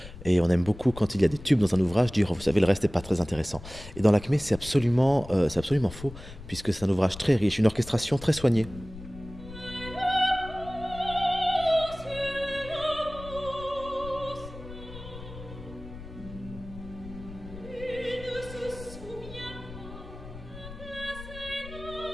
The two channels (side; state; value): left; noise; rumble, 14 dB below the sound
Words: Et on aime beaucoup quand il y a des tubes dans un ouvrage dire oh, vous savez le reste n'est pas très intéressant. Et dans Lakmé c'est absolument faux puisque c'est un ouvrage très riche, une orchestration très soignée.